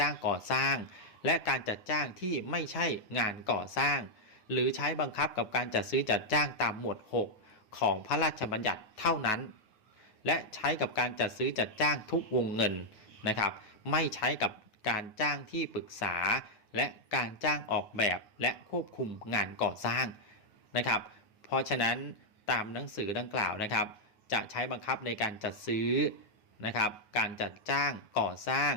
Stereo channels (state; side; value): late; right; 9.3 ms